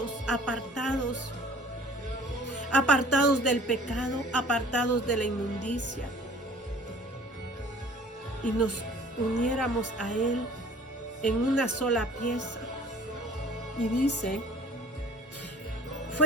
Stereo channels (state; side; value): normal; both; correlation 0.49